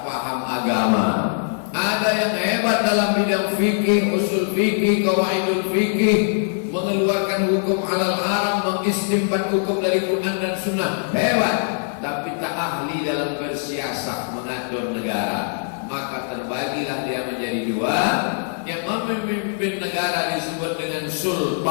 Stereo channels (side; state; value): right; silent; digital silence